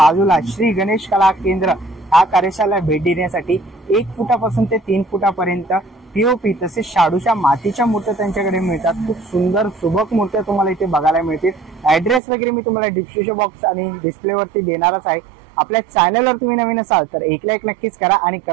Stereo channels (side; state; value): left; drops out; at 12.2 s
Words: श्री गणेश कला केंद्र हा कार्यशाळेला भेट देण्यासाठी 1 फुटापासून ते 3 फुटापर्यंत पीओपी तसेच शाडूच्या मातीच्या मूर्त्या त्यांच्याकडे मिळतात। खूप सुंदर सुबक मूर्त्या तुम्हाला इथे बघायला मिळतील। ऍड्रेस वगैरे मी तुम्हाला डिस्क्रिप्शन बॉक्स आणि डिस्प्लेवरती देणारच आहे। आपल्या चॅनलवर तुम्ही नवीन असाल तर एक लाईक नक्कीच करा आणि